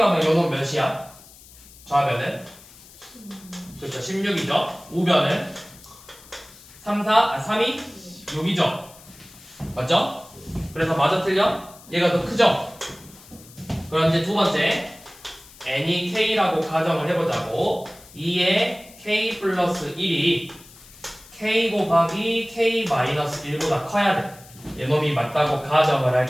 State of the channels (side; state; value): left; noise; hiss, 22 dB below the sound